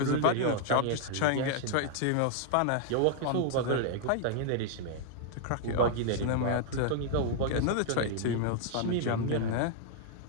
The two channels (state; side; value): different; both; correlation 0.00